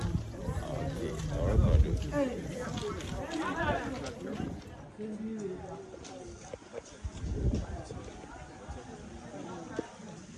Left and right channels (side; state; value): both; identical; correlation 1.00